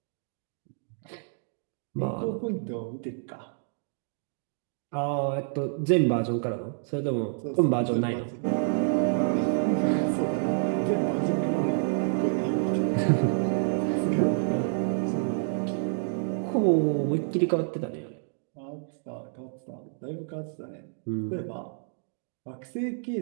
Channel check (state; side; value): silent; left; digital silence